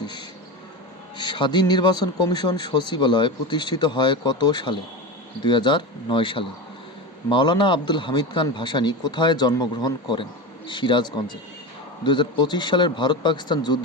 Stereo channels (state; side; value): normal; both; correlation 0.23